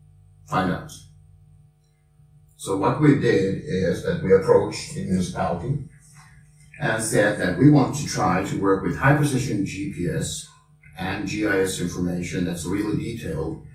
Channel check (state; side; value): identical; both; correlation 1.00